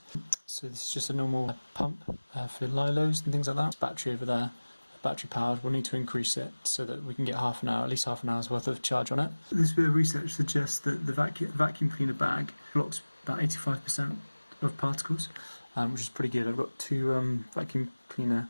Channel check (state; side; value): inverted; both; correlation -1.00